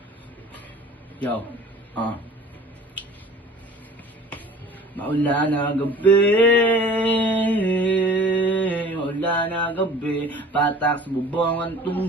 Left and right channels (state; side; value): normal; both; correlation 0.45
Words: Yo, maulan na gabi, patak sa bubong ang